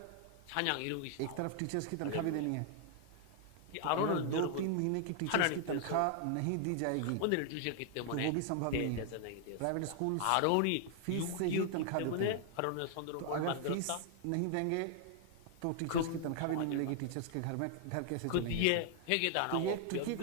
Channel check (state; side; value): different; both; correlation 0.00